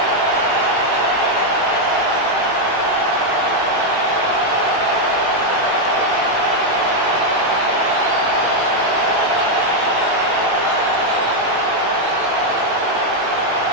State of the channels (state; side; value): late; left; 18 ms